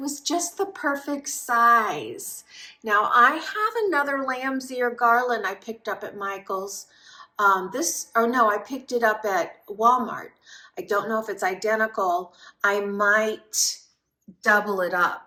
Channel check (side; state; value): both; identical; correlation 1.00